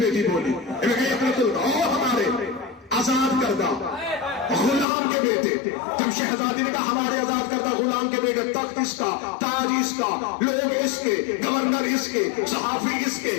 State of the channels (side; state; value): right; drops out; at 4.9 s